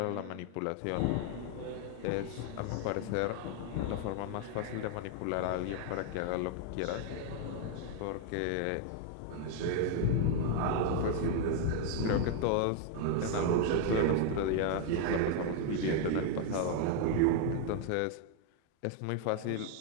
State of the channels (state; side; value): different; both; correlation 0.00